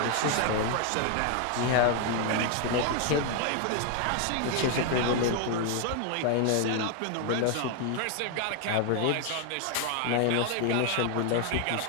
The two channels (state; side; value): different; both; correlation 0.00